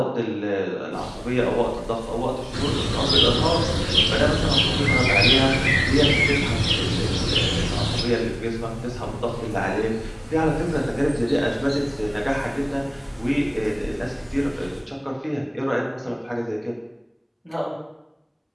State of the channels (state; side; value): identical; both; correlation 1.00